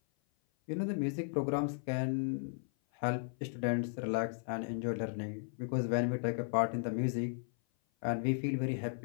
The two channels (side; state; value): right; silent; 54 dB below the other